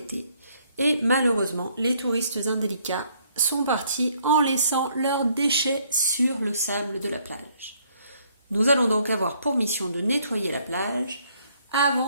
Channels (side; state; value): both; inverted; correlation -0.67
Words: et malheureusement les touristes indélicats sont partis en laissant leurs déchets sur le sable de la plage. Nous allons donc avoir pour mission de nettoyer la plage